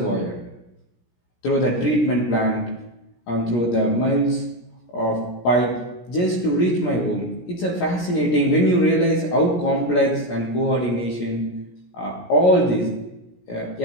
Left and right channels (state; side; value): late; right; 17 ms